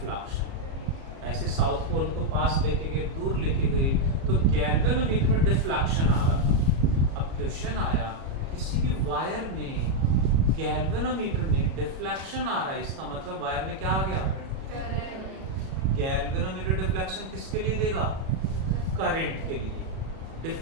ऐसे साउथ पोल को पास लेके गए, दूर लेके गए, तो गैल्वेनोमीटर में डिफ्लेक्शन आ रहा था। अब क्वेश्चन आया, किसी भी वायर में गैल्वेनोमीटर में डिफ्लेक्शन आ रहा है, इसका मतलब वायर में क्या आ गया? गैल्वेनोमीटर डिफ्लेक्शन किसके लिए देगा? करंट के लिए।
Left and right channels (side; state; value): left; late; 37 ms